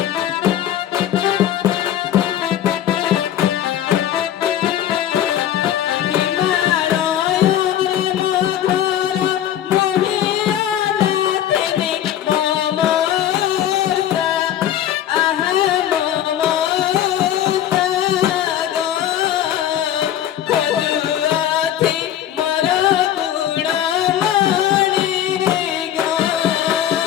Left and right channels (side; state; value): right; quieter; 11.3 dB